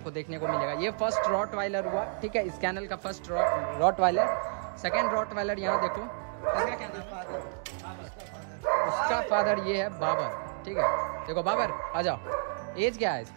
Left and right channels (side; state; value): left; silent; digital silence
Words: को देखने को मिलेगा। ये फर्स्ट रॉटवाइलर हुआ, ठीक है, इस कैनल का फर्स्ट रॉटवाइलर। सेकेंड रॉटवाइलर यहाँ देखो, इसका क्या नाम है? उसका फादर ये है बाबर, ठीक है। देखो बाबर, आ जाओ। एज क्या है